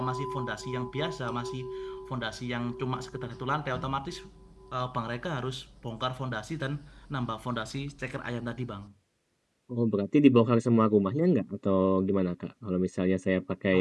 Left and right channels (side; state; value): both; identical; correlation 1.00